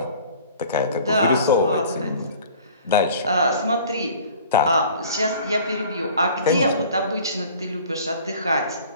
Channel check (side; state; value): both; inverted; correlation -0.47